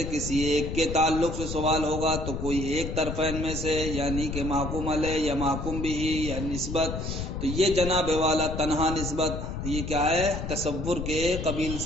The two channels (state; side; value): noise; left; rumble, 5 dB below the sound